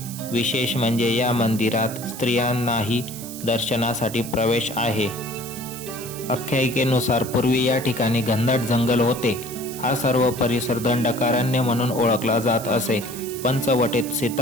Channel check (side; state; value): right; noise; hiss, 12 dB below the sound